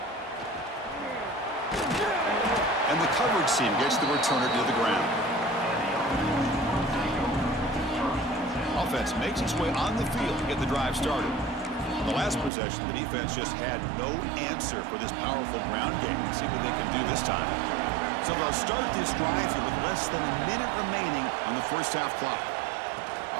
And the coverage team gets the returner to the ground. Offense makes its way on the field to get the drive started. On the last possession, the defense just had no answer for this powerful ground game. Let's see what they can do this time. So they'll start this drive here with less than a minute remaining on the first half clock.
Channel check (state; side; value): drops out; left; at 12.5 s